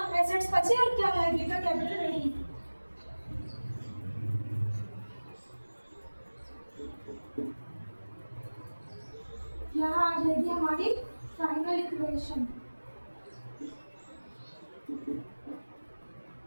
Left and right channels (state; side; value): inverted; both; correlation -1.00